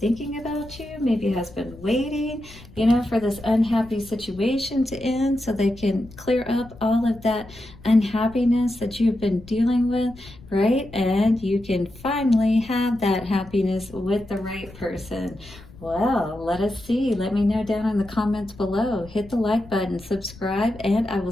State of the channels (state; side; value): noise; left; rumble, 20 dB below the sound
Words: about you, maybe has been waiting, you know, for this unhappy situation to end so they can clear up all of that unhappiness that you've been dealing with, right? And you can finally have that happiness with the right person. Well, let us see. Let me know down in the comments below. Hit the like button, subscribe, and I will